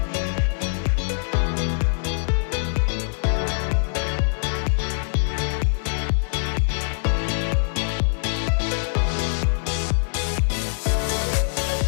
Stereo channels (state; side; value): silent; right; digital silence